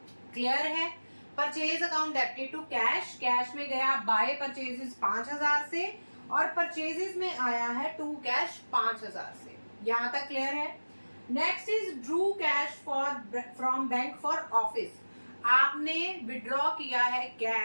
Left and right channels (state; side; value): inverted; both; correlation -1.00